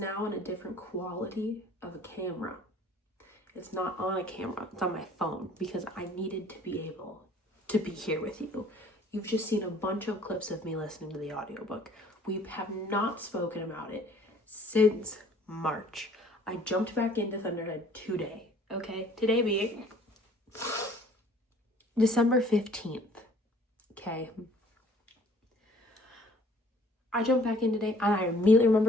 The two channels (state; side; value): normal; both; correlation 0.55